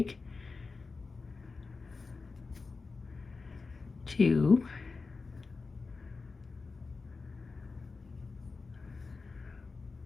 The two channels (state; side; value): quieter; right; 4.2 dB